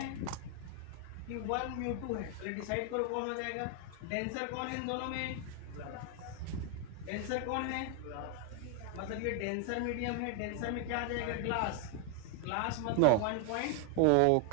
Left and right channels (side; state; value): both; different; correlation 0.00